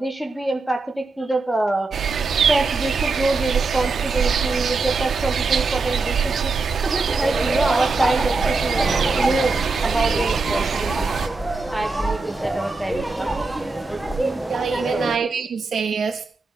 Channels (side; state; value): left; quieter; 3.8 dB